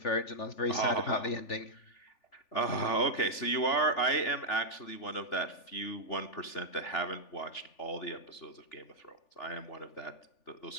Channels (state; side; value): late; right; 3.4 ms